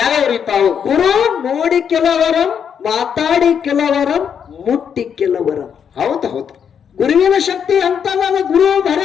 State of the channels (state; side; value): quieter; right; 7.7 dB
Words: ಅವು? ಗುರು ನೋಡಿ ಕೆಲವರಂ, ಮಾತಾಡಿ ಕೆಲವರಂ, ಮುಟ್ಟಿ ಕೆಲವರಂ. ಹೌದು ಹೌದು. ಗುರುವಿನ ಶಕ್ತಿ ಅಂತಲ್ಲ. ಗುರು